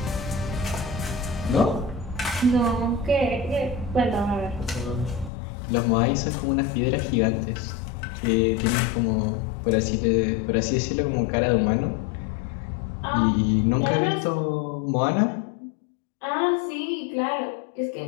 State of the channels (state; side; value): drops out; right; at 5.3 s